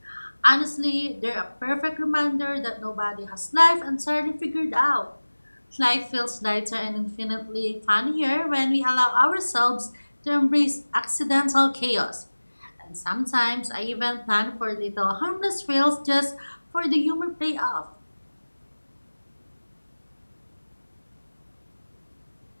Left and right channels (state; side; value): inverted; both; correlation -1.00